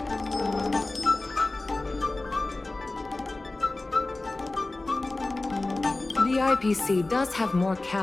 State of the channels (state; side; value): quieter; right; 3.0 dB